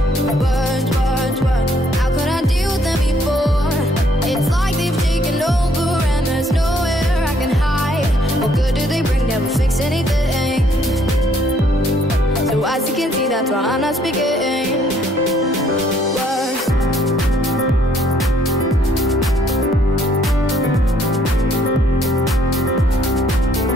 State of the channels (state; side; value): normal; both; correlation 0.66